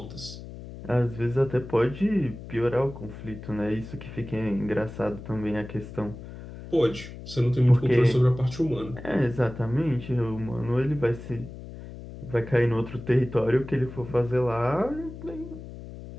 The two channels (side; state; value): left; noise; hum, 13 dB below the sound